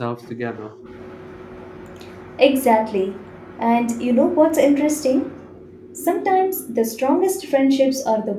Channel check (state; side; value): identical; both; correlation 1.00